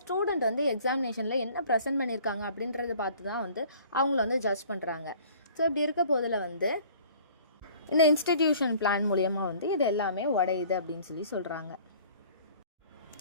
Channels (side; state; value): both; inverted; correlation -0.51